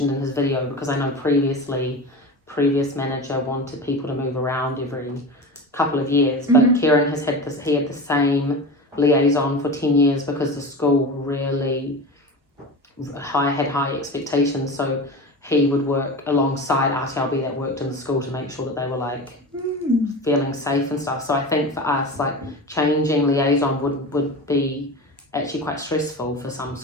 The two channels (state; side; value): normal; both; correlation 0.29